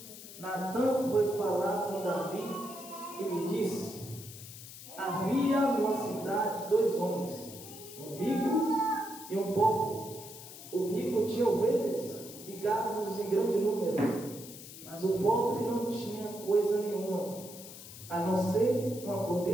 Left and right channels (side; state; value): left; noise; hiss, 14 dB below the sound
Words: Natã foi falar com Davi e lhe disse: havia numa cidade 2 homens, um rico e um pobre. O rico tinha ovelhas e gados em grande número, mas o pobre não tinha coisa nenhuma, a não ser uma